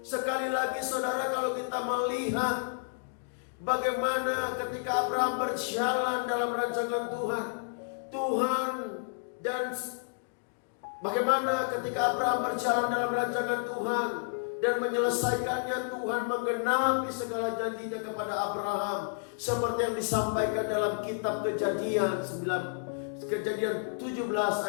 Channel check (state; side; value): silent; right; digital silence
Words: Sekali lagi saudara, kalau kita melihat bagaimana ketika Abraham berjalan dalam rancangan Tuhan, dan bagaimana ketika Abraham berjalan dalam rancangan Tuhan dan menyelesaikannya, Tuhan menggenapi segala janjinya kepada Abraham, seperti yang disampaikan dalam kitab Kejadian 17